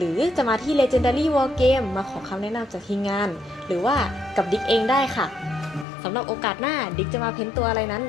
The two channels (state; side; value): drops out; right; at 5.9 s